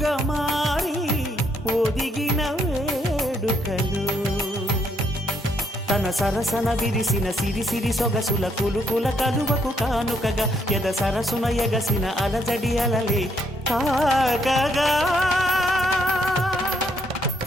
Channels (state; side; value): normal; both; correlation 0.72